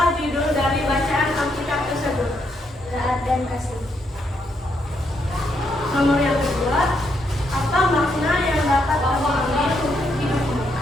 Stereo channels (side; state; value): both; normal; correlation 0.77